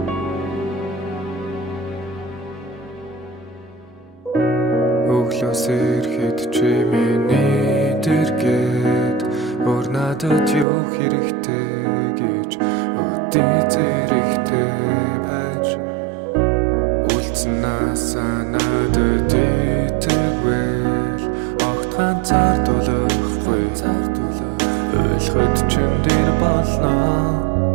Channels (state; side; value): drops out; left; at 10.7 s